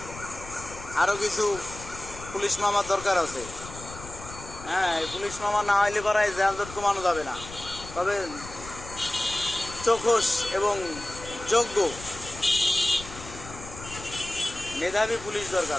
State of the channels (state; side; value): noise; left; rumble, 14 dB below the sound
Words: আরও কিছু পুলিশ মামার দরকার আছে। হ্যাঁ, এই পুলিশ মামা না হইলে পরে যানজট কমানো যাবে না। তবে চোখস এবং যোগ্য মেধাবী পুলিশ